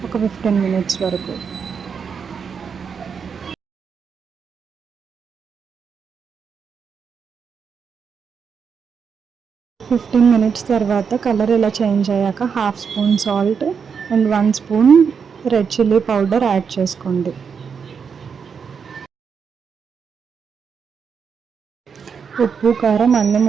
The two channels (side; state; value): left; quieter; 6.3 dB